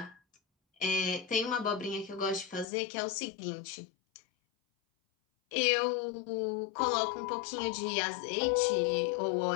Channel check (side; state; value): right; drops out; at 2.7 s